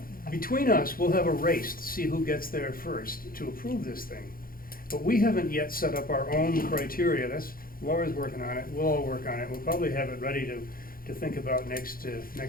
Between us, we'll have a race to see who gets there first to approve this thing. But we haven't yet set up our own criteria. That's, Laura's working on it, we'll all work on it. We'll probably have it ready to think about next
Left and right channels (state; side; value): late; right; 0.42 ms